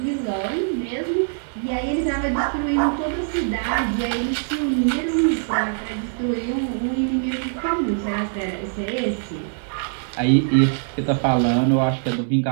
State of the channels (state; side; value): silent; left; digital silence